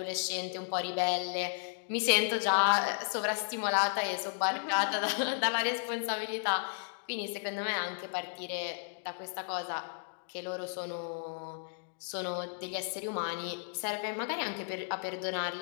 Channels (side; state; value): right; silent; digital silence